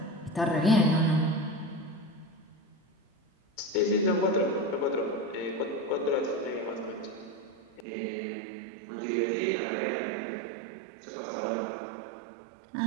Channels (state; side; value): drops out; left; at 7.9 s